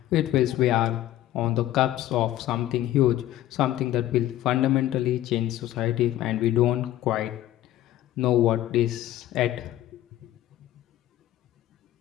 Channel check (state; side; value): quieter; right; 13.8 dB